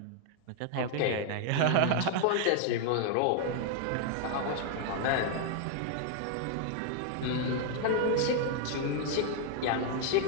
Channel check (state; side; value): different; both; correlation 0.00